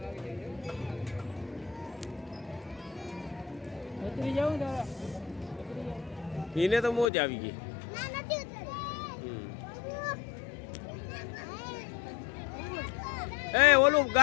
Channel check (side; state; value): right; drops out; at 7.1 s